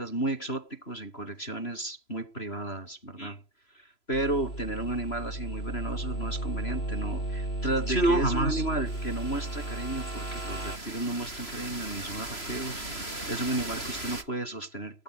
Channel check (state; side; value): late; right; 3.0 ms